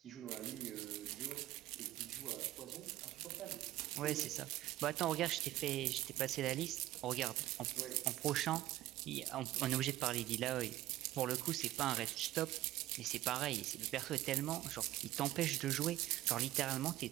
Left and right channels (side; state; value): left; quieter; 15.3 dB